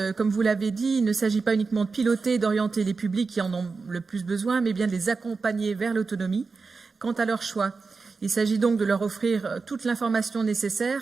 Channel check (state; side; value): quieter; left; 4.5 dB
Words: comme vous l'avez dit, il ne s'agit pas uniquement de piloter et d'orienter les publics qui en ont le plus besoin, mais bien de les accompagner vers l'autonomie quant à leur choix. Il s'agit donc de leur offrir toute l'information